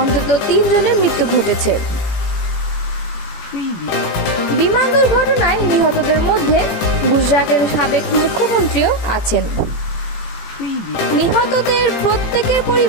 3 জনের মৃত্যু ঘটেছে। বিমান দুর্ঘটনায় নিহতদের মধ্যে গুজরাটের সাবেক মুখ্যমন্ত্রীও আছেন। নিহতদের প্রত্যেকের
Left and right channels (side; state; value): right; late; 18 ms